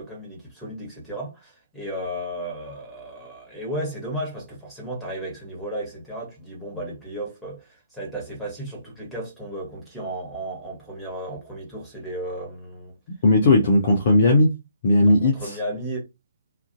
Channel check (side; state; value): both; inverted; correlation -0.68